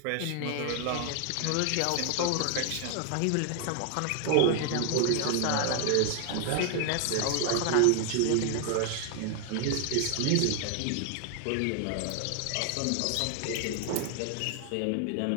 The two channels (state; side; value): different; both; correlation 0.00